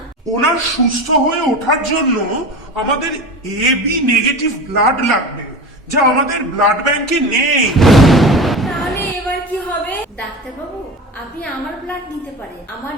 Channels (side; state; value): both; normal; correlation 0.30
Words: ওনার সুস্থ হয়ে ওঠার জন্য আমাদের এবি নেগেটিভ ব্লাড লাগবে, যা আমাদের ব্লাড ব্যাংকে নেই। তাহলে এবার কি হবে? ডাক্তারবাবু, আপনি আমার ব্লাড নিতে পারেন, আমার